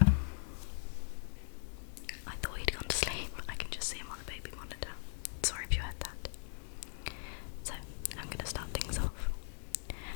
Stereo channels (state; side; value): silent; right; digital silence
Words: I thought he'd gone to sleep. I can just see him on the baby monitor. Sorry if you heard that. So, I'm going to start things off.